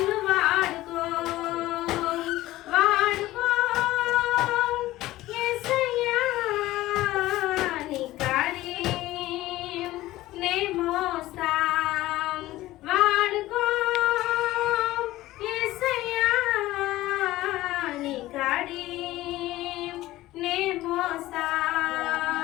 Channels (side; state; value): right; quieter; 16.6 dB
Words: వాడుకో వాడుకో యేసయ్యా నీ కాడి నే మోస్తా వాడుకో యేసయ్యా నీ కాడి నే మోస్తా